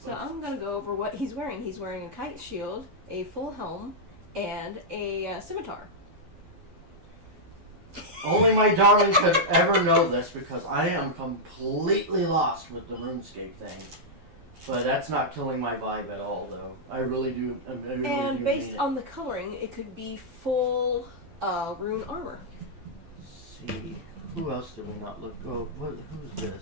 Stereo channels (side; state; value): left; late; 12 ms